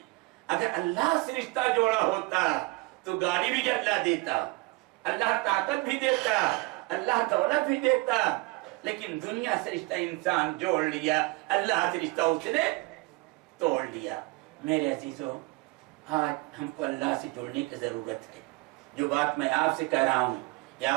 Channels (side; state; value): left; quieter; 23.9 dB